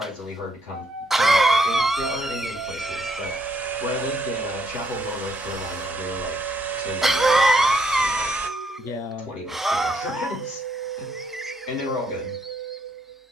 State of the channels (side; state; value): both; normal; correlation 0.72